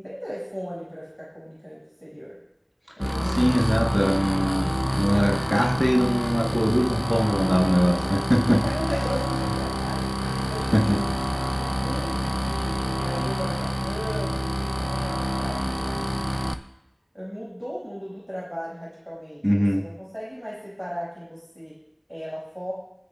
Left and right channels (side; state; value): both; identical; correlation 1.00